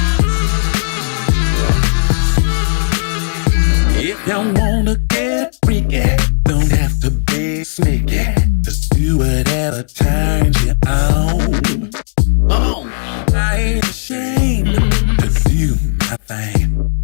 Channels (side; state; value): right; silent; digital silence